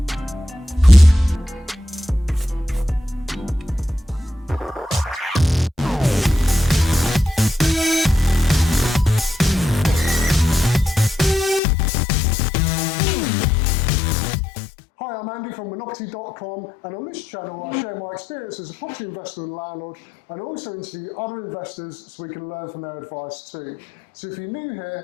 Hi, I'm Andy from Monoperty.com, and on this channel I share my experience as a property investor and landlord, and also interview other investors so we can learn from their advice too. So if you're new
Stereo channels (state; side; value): drops out; right; at 11.6 s